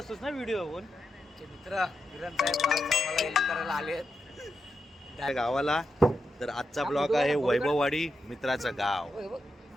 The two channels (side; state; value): both; normal; correlation 0.87